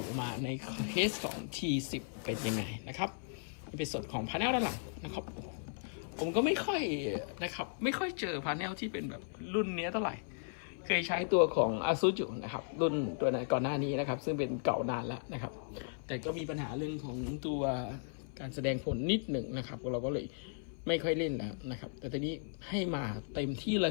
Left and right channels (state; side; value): silent; right; 54 dB below the other